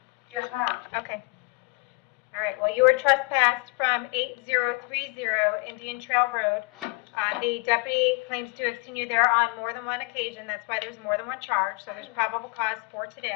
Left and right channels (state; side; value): quieter; right; 29.0 dB